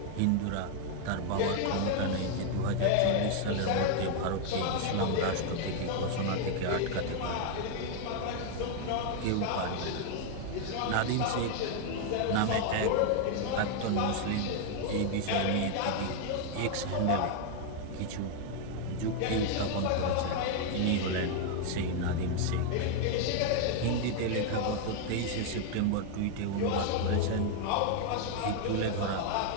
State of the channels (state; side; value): different; both; correlation 0.00